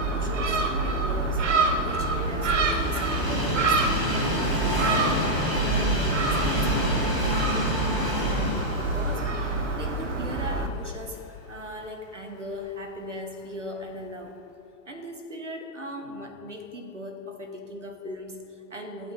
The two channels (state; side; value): late; left; 1.0 ms